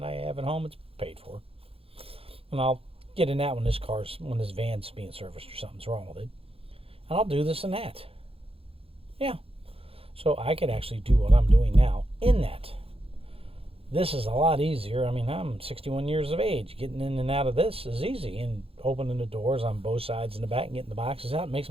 I have at home. It's paid for. And I'll get in that when this van's being serviced or something's wrong with it. And I'll do this and that. Yeah. So I could actually do what I'm doing now in that. This is a lot easier. I'm 61 years of age. Getting in and out of this is easy. And opening the doors on both sides in the back and getting the boxes out makes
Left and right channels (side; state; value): left; late; 0.27 ms